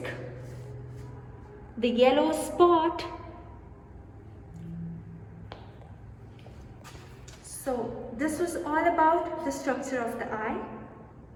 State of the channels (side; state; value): both; identical; correlation 1.00